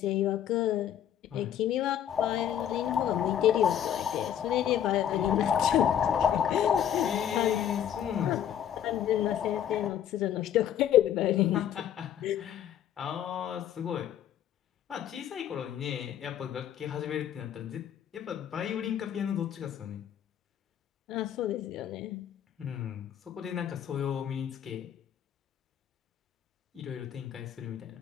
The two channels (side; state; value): right; quieter; 10.0 dB